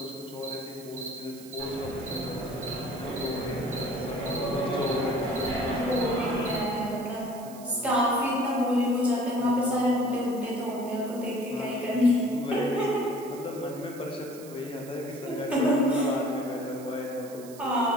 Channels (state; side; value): noise; right; hiss, 19 dB below the sound